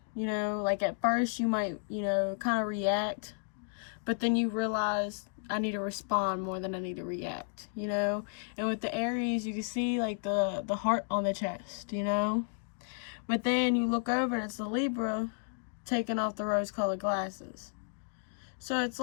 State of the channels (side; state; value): right; silent; digital silence